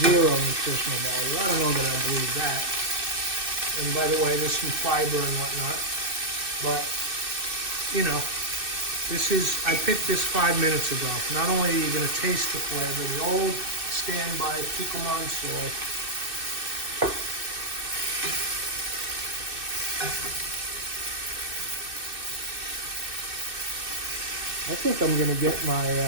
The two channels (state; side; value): late; left; 2.6 ms